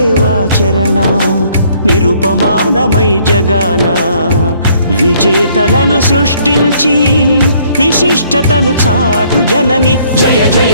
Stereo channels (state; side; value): inverted; both; correlation -0.63